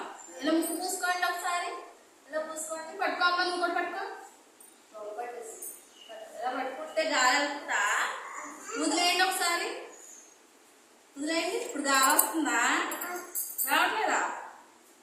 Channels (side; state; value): both; identical; correlation 1.00